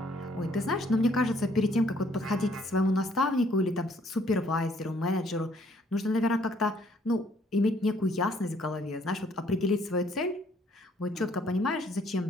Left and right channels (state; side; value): normal; both; correlation 0.64